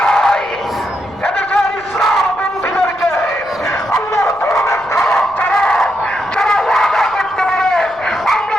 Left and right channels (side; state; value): left; noise; rumble, 26 dB below the sound